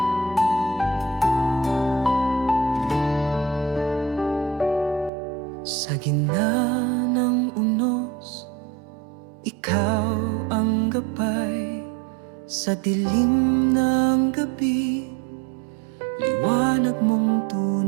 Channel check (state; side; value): drops out; left; at 5.1 s